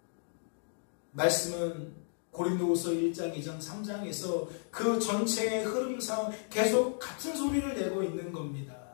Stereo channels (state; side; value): silent; right; digital silence